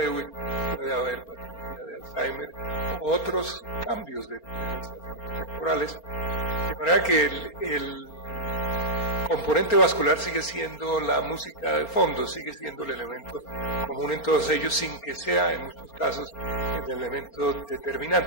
puede haber patología de Alzheimer, otros cambios temporales, de manera que el componente vascular sigue siendo la música de fondo, sigue siendo el elemento común en todos ellos, sin que sea en muchos casos el elemento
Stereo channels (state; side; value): late; right; 4.3 ms